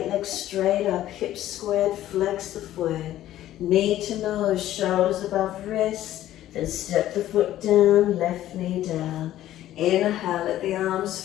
leg straight up, hips squared, flex the foot. Knee to nose, shoulders above wrist. Then step the foot down, left knee down. Inhale, let the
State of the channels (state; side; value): quieter; right; 13.4 dB